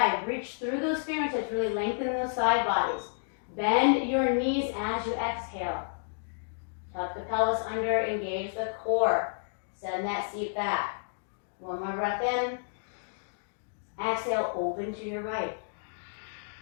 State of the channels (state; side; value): silent; right; digital silence